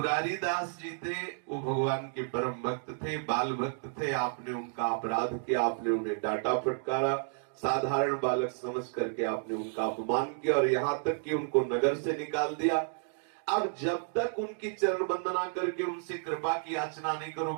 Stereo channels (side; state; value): left; silent; digital silence